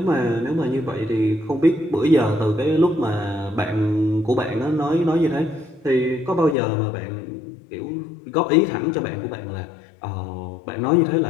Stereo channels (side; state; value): right; drops out; at 6.6 s